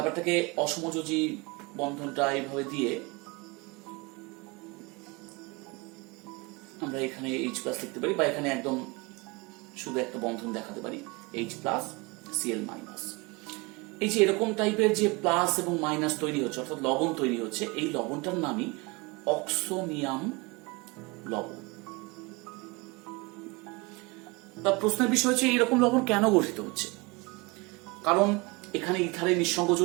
অসমযোজী বন্ধনটা এইভাবে দিয়ে আমরা এখানে H প্লাস লিখতে পারি, বা এখানে একদম শুধু একটা বন্ধন দেখাতে পারি H প্লাস Cl মাইনাস। এই যে এরকম টাইপের যে প্লাস এবং মাইনাস তৈরি হচ্ছে, অর্থাৎ লবণ তৈরি হচ্ছে, এই লবণটার নামই অক্সোনিয়াম লবণ। তার প্রশ্নের বিষয় হচ্ছে এইরকম লবণ কেন গঠিত হচ্ছে। কারণ এখানে ইথারের নিঃসঙ্গ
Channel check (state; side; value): quieter; left; 26.2 dB